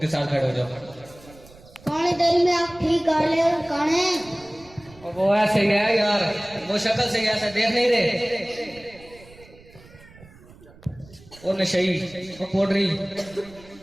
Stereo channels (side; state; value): right; noise; rumble, 23 dB below the sound